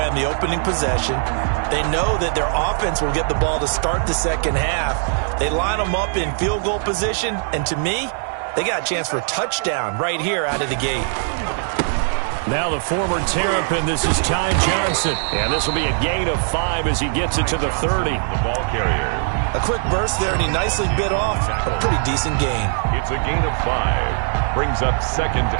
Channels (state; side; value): silent; left; digital silence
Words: on the opening possession. They know that their offense will get the ball to start the second half. They line them up in field goal position. And to me, they got a chance for a touchdown right here out of the gate. Now the former Terrapin, this is Ty Johnson. And this will be a gain of 5 as he gets it to the 30. The ball carrier. A quick burst there, and he nicely bit off a pretty decent gain. It's a gain of 5. Brings up 2nd